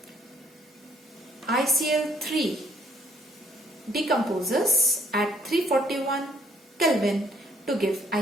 ICl3 decomposes at 341 Kelvin to give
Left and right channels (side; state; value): both; normal; correlation 0.64